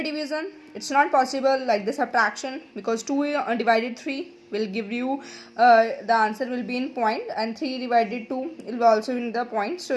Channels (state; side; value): identical; both; correlation 1.00